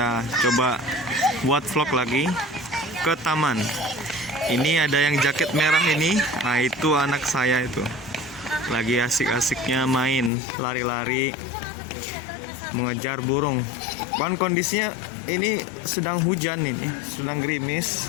coba buat vlog lagi ke taman. Ini ada yang jaket merah ini. Nah, itu anak saya itu lagi asik-asiknya main lari-lari mengejar burung. Kan kondisinya ini sedang hujan, ini sedang gerimis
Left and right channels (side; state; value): right; drops out; at 10.3 s